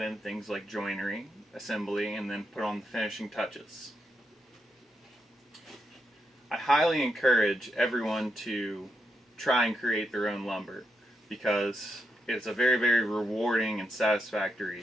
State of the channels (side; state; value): both; normal; correlation 0.82